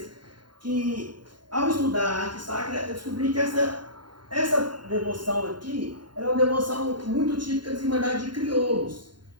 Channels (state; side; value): late; left; 0.71 ms